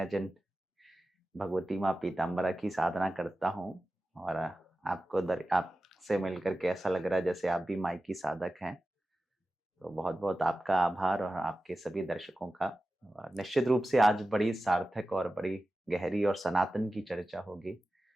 जिन भगवती माँ पीताम्बरा की साधना करता हूँ और आपसे मिलकर के ऐसा लग रहा है जैसे आप भी माई की साधक हैं, तो बहुत बहुत आपका आभार और आपके सभी दर्शकों का। निश्चित रूप से आज बड़ी सार्थक और बड़ी गहरी और सनातन की चर्चा होगी,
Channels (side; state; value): both; normal; correlation 0.94